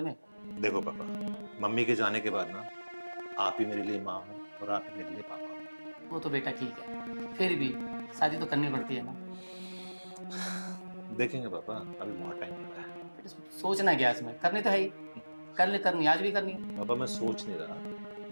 में। देखो पापा, मम्मी के जाने के बाद ना आप ही मेरे लिए माँ हो और आप ही मेरे लिए पापा हो। वो तो बेटा ठीक है, फिर भी शादी तो करनी पड़ती है ना। देखेंगे पापा, अभी बहुत टाइम पड़ा है। बेटा सोचना क्या इसमें, करनी तो है ही, करनी आज भी करनी है। पापा मैं सोच नहीं रहा,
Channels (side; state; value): both; inverted; correlation -1.00